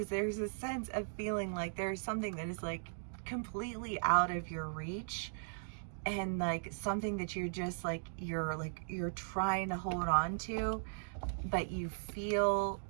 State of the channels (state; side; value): silent; left; digital silence